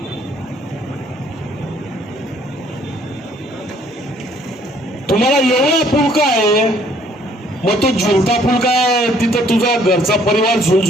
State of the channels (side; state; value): both; normal; correlation 0.62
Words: तुम्हाला एवढा फुलका आहे, मग तो झुलता फुलका आहे, तिथं तुझा घरचा परिवार